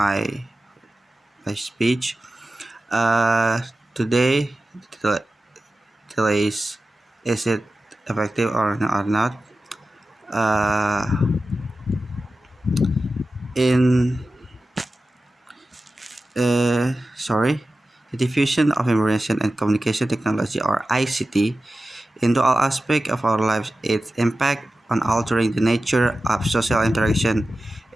speech. Today, the is it effective or not? Uh, in sorry, the diffusion of information and communication technology, or ICT, into all aspects of our lives. Its impact on altering the nature of social interaction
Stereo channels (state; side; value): normal; both; correlation 0.94